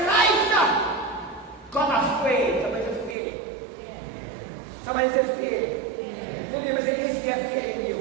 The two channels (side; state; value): left; drops out; at 3.2 s